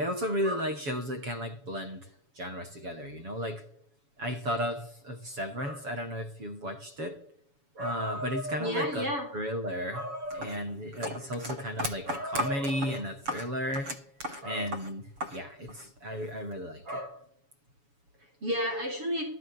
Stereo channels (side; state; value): left; late; 7.1 ms